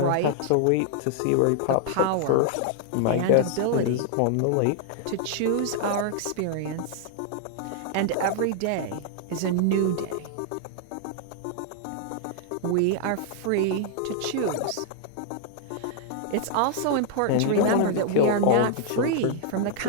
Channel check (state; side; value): different; both; correlation -0.01